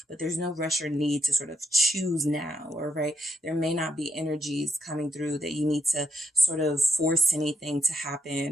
but there's no rush or need to sort of choose now, or right. There may not be energies coming through that you need to sort of force anything to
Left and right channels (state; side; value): normal; both; correlation 0.79